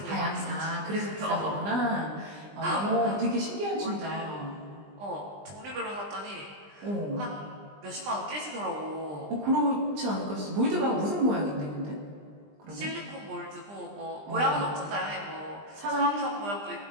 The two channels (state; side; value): late; left; 20 ms